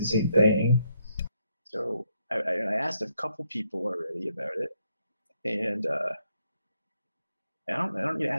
same thing. So I asked a couple people already about it, and I don't need to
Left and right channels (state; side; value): inverted; both; correlation -0.76